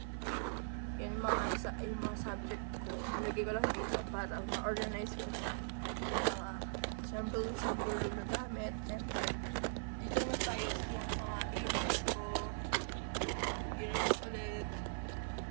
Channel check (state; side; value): silent; left; 51 dB below the other